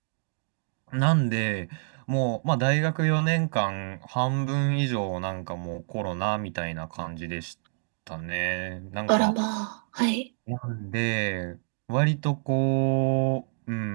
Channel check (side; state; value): left; silent; digital silence